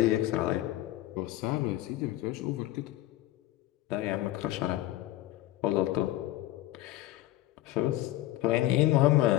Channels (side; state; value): right; quieter; 15.6 dB